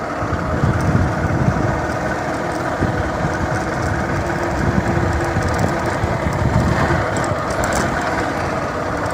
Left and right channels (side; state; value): both; identical; correlation 1.00